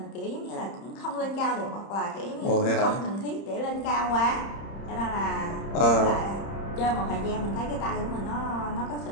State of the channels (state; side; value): late; right; 30 ms